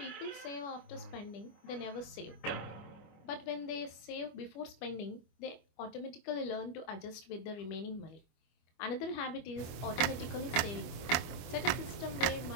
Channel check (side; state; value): right; late; 24 ms